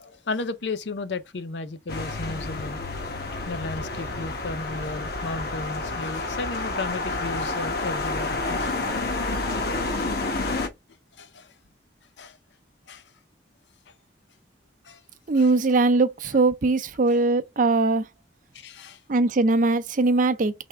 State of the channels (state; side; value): normal; both; correlation 0.25